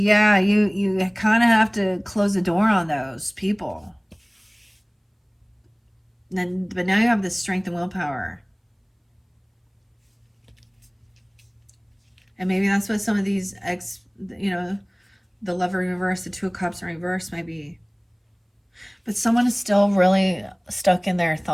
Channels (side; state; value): both; identical; correlation 1.00